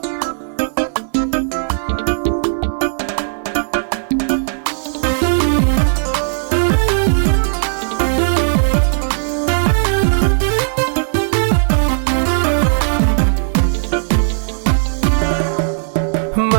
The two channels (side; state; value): left; silent; digital silence